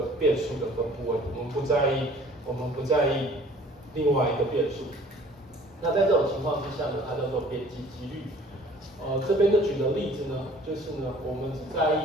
变数的分布位，我们不在意另外一个变数。那在这种情况之下呢，它叫做边际几率。这边的举的例子呢，就是呢，我们只在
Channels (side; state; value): both; normal; correlation 0.51